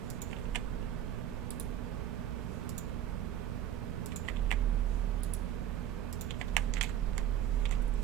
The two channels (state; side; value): quieter; left; 11.0 dB